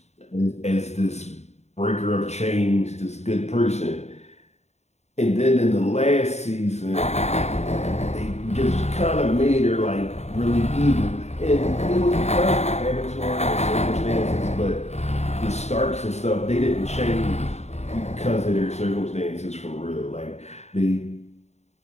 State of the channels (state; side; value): late; right; 0.32 ms